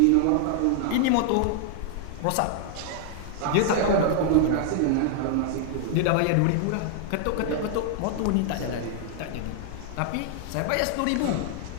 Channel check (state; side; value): different; both; correlation -0.01